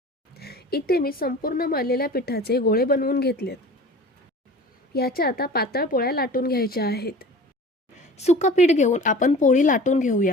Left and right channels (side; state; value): both; normal; correlation 0.40